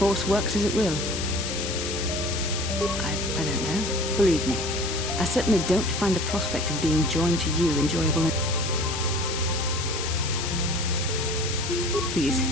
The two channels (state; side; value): noise; left; hiss, 5 dB below the sound